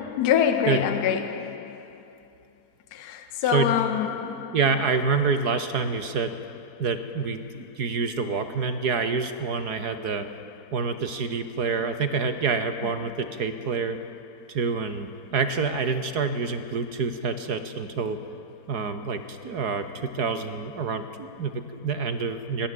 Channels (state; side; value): late; left; 4.8 ms